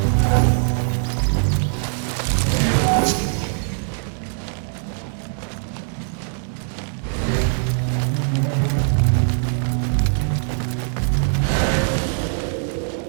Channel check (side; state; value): left; silent; 59 dB below the other